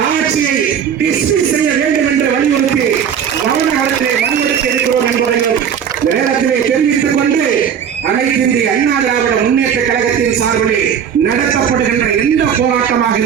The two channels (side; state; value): left; quieter; 8.1 dB